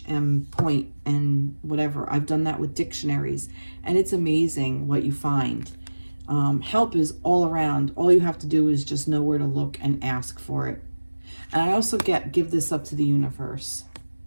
and point and whatever. I've done that with dictionaries, and it's amazing what you find. Help is all around. All you have to do is just know where to look and ask for it. And I also give this up to the universe.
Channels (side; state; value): both; inverted; correlation -1.00